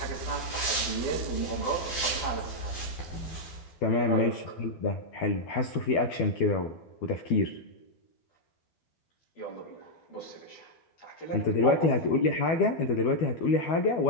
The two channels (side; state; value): right; late; 12 ms